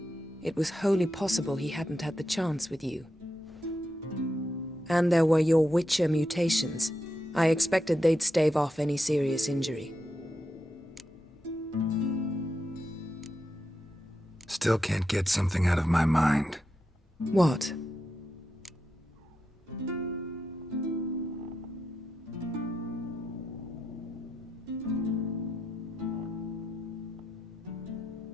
It was wholly possible he hadn't had the chance with you. And there were your Witcher mutations. I expected they'd stave off any serious injury. Still can't get something out of my mind. What?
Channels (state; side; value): normal; both; correlation 0.86